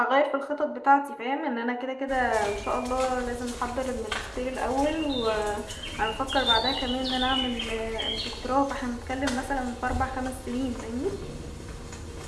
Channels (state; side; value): identical; both; correlation 1.00